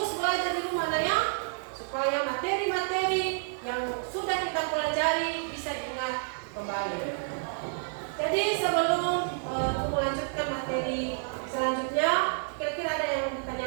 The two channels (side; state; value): left; silent; digital silence